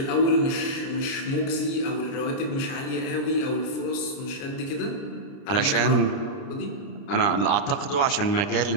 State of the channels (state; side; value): late; right; 30 ms